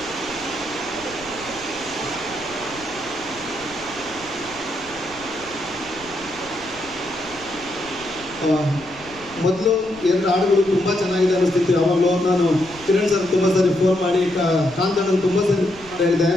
ಮೊದಲು ಎರಡು ಹಾಡುಗಳು ತುಂಬ ಚೆನ್ನಾಗಿದೆ ಅನ್ನಿಸ್ತಿತ್ತು. ಯಾವಾಗಲೂ ನಾನು ಕಿರಣ್ ಸರ್ ತುಂಬ ಸರಿ ಫೋನ್ ಮಾಡಿ ಕಾಂತಣ್ಣನ ತುಂಬ ಸರಿ ಹೇಳಿದೆ,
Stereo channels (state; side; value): noise; left; rumble, 21 dB below the sound